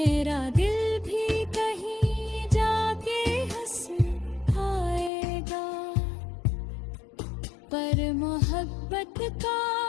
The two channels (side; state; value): right; drops out; at 5.1 s